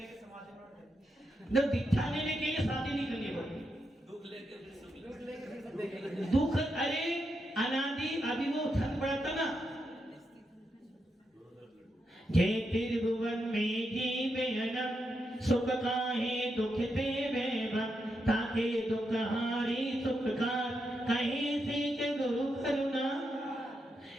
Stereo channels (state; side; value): normal; both; correlation 0.84